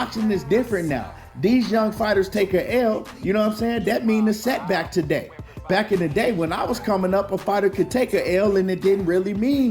is different now. These young fighters take a L, you know what I'm saying? That means a setback today. Back in the day when I was coming up, a fighter could take a L and it didn't really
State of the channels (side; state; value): both; identical; correlation 1.00